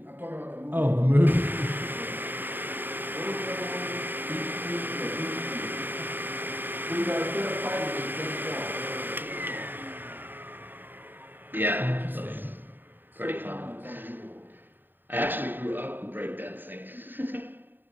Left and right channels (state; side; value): late; left; 0.092 ms